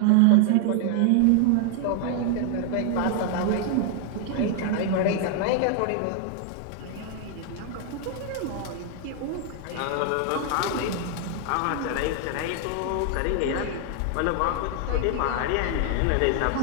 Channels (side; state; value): both; different; correlation 0.00